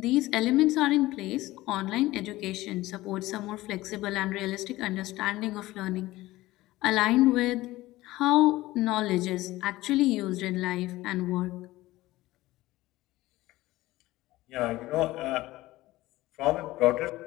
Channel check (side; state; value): right; quieter; 17.8 dB